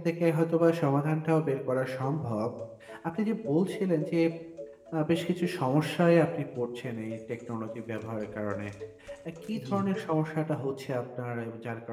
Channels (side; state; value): both; identical; correlation 1.00